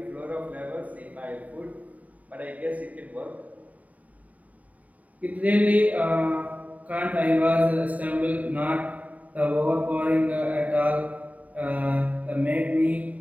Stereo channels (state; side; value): late; left; 0.071 ms